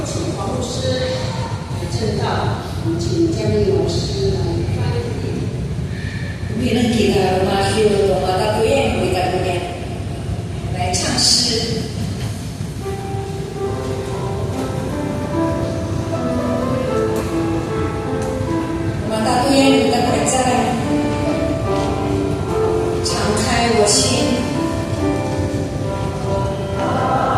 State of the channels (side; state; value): both; identical; correlation 1.00